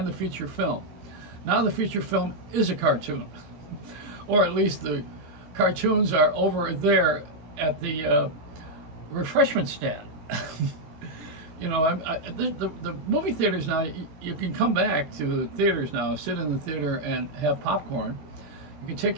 the feature film. Now the feature film is a cartoon, or at least the cartoons are over there at the refreshment stand. You know, the movie theaters now, you can come back to the theaters now, sit in the theater and have popcorn. You can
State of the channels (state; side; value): late; left; 18 ms